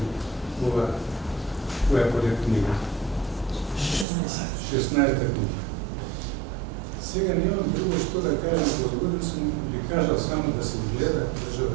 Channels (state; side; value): drops out; left; at 4.0 s